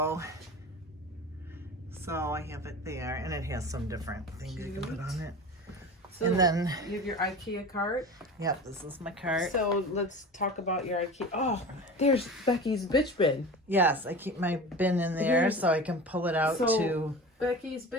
So I have it there, and it has some different things you can put on it. So and then you have your IKEA cart. Yep, this is my cart. So let's talk about your IKEA. Oh, there's Becky's bitch bin. Yes, I keep my bin in there so I can pull it out to Becky's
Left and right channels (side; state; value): both; normal; correlation 0.33